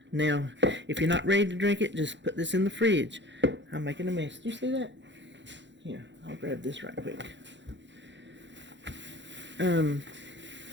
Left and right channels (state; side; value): late; left; 0.53 ms